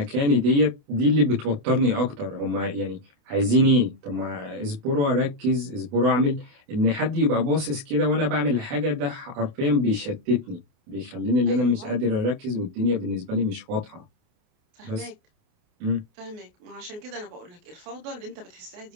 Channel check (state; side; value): late; left; 28 ms